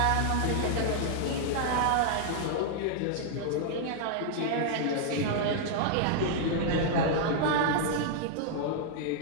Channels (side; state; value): both; different; correlation -0.01